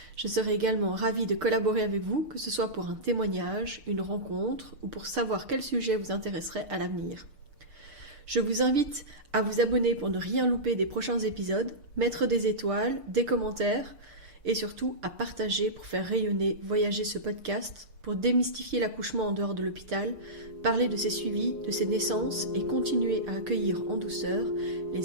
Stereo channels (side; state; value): left; late; 6.6 ms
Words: Je serai également ravie de collaborer avec vous, que ce soit pour un témoignage, une rencontre ou pour savoir quel sujet vous intéresserait à l'avenir. Je vous invite à vous abonner pour ne rien louper des prochains épisodes, mettre des étoiles, des commentaires et surtout à partager pour faire rayonner, voyager ce podcast, pour démystifier l'accouchement en dehors de l'hôpital, parler de ses suivis, de ses naissances et continuer à accueillir en douceur